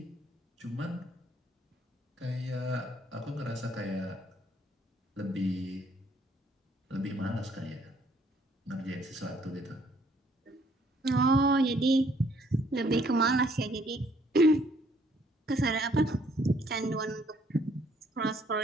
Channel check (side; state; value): both; normal; correlation 0.65